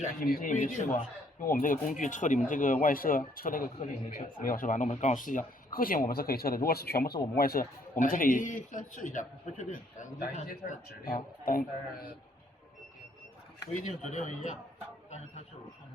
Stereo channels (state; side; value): normal; both; correlation 0.66